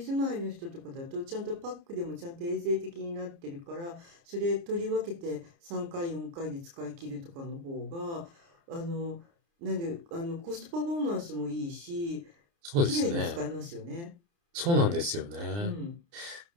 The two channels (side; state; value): left; late; 29 ms